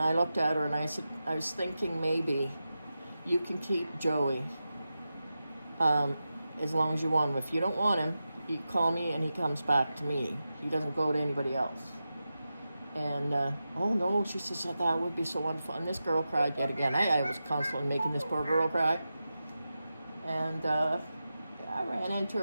looked at her and I said, "I was thinking maybe you can keep Joey as long as you want him. If you don't want him, you call me and he comes back to me. He doesn't go to anybody else." And, "Oh no," she says, "that would be so wonderful." And this girl cried yet again. I was constantly making this poor girl cry. And I ran into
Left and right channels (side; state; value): both; inverted; correlation -0.92